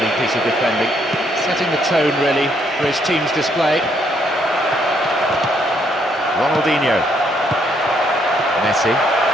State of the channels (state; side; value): normal; both; correlation 0.71